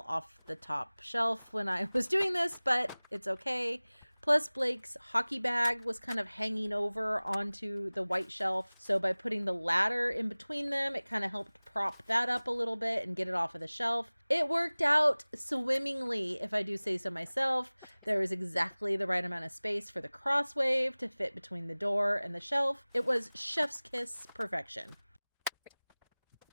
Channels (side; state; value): both; inverted; correlation -1.00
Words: off the top shelf when I was doing this, but it's okay. Plus, Blake's hockey bag was kind of hanging over onto the white shelf. So by putting the ladder in between them, it kind of helped prop that up a little bit and get it off of the shelf. It worked out swimmingly, if I do say so myself. There was exactly the right amount of space for the crosswave to fit between the door and the shelf. It was chef's kiss perfection.